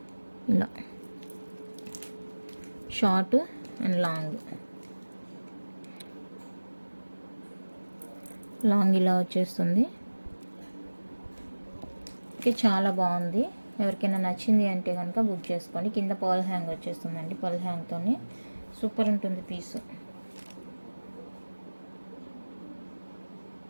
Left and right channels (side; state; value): both; inverted; correlation -1.00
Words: ఇలా షార్ట్ అండ్ లాంగ్ ఇలా వచ్చేస్తుంది. ఓకే, చాలా బాగుంది. ఎవరికైనా నచ్చింది అంటే కనుక బుక్ చేసుకోండి. కింద పర్ల్ హ్యాంగ్ వచ్చేస్తుందండి, పర్ల్ హ్యాంగ్తోని సూపర్ ఉంటుంది పీసు.